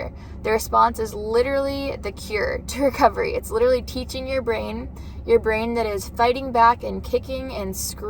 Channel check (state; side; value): identical; both; correlation 1.00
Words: The response is literally the cure to recovery. It's literally teaching your brain that is fighting back and kicking and